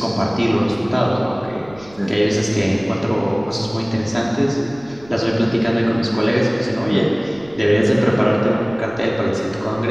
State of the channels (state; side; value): noise; right; rumble, 24 dB below the sound